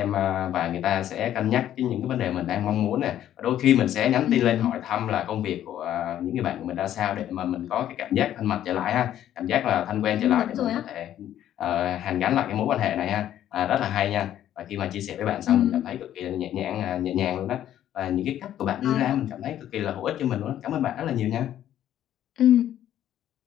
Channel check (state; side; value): quieter; right; 11.5 dB